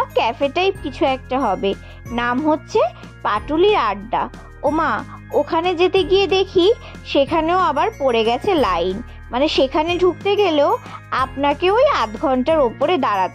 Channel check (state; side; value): identical; both; correlation 1.00